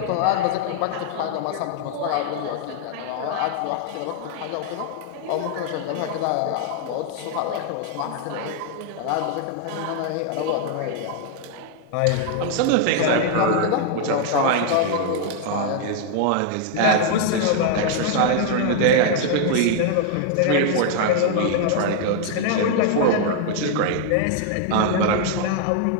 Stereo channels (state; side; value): different; both; correlation 0.00